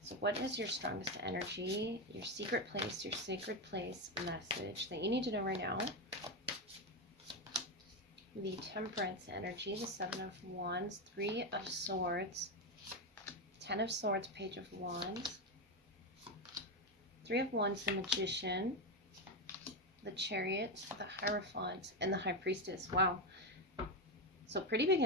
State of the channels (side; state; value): both; normal; correlation 0.11